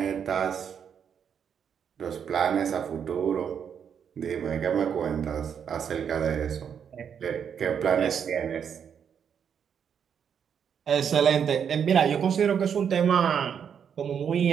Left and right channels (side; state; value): left; quieter; 7.7 dB